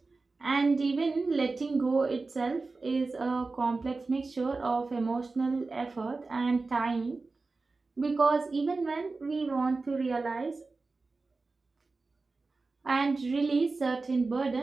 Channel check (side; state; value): left; quieter; 3.8 dB